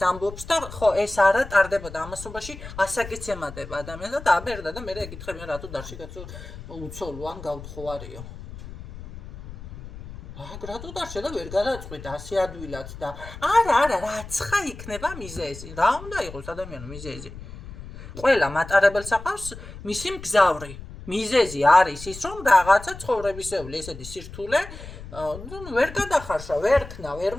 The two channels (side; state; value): left; noise; rumble, 13 dB below the sound